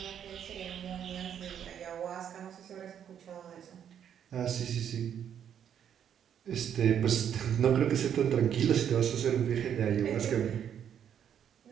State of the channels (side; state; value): left; quieter; 9.0 dB